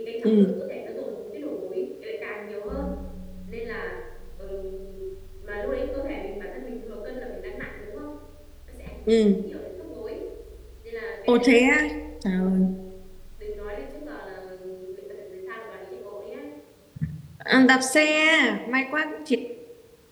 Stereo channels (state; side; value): identical; both; correlation 1.00